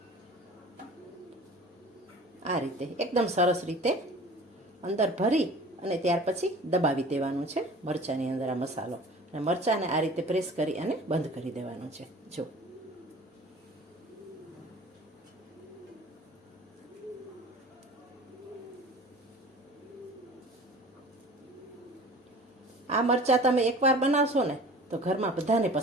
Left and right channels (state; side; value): normal; both; correlation 0.43